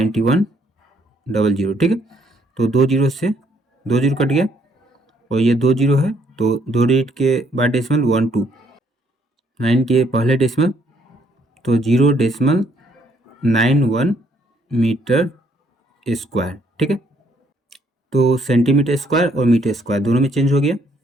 ठीक है। तो 2 जीरो से 2 जीरो कट गया और ये 2 जीरो है, तो 2 डिजिट के बाद डेसिमल 1 2, 9 के पहले डेसिमल, तो 0.91 मीटर स्क्वायर, ठीक है। तो सेंटीमीटर स्क्वायर और मीटर स्क्वायर दोनों में चेंज हो गया।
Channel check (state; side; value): normal; both; correlation 0.68